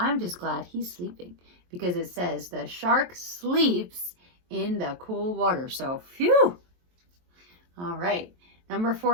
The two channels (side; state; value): left; late; 23 ms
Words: just glad he's sleeping because it says the shark sleeps in the cool water. So, phew. All right. Number